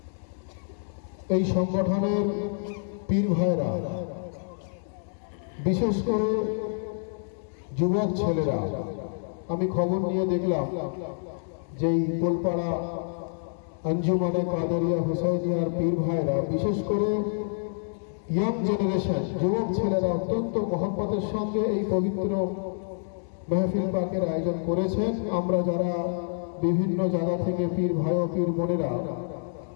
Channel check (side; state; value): right; silent; digital silence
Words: এই সংগঠনের পীর ভাইরা, বিশেষ করে যুবক ছেলেরা, আমি খবর নিয়ে দেখলাম যে এই পোলপাড়া আঞ্জুমানে কাদেরিয়া হুসাইনিয়ার পীর ভাইরা, বিশেষ করে ইয়াং জেনারেশন যুবক ছেলেরা অত্যন্ত মহব্বতের সঙ্গে এই পবিত্র মেহফিল পাকের আয়োজন করেছেন। আমরা যারা বিভিন্ন জায়গা থেকে পীর ভাই ও পীর বোনেরা